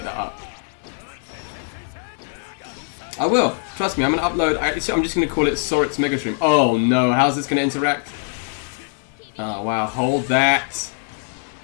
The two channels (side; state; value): right; silent; digital silence